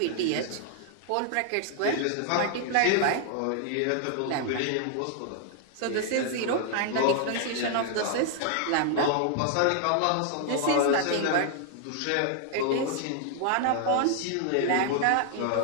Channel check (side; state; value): both; different; correlation 0.00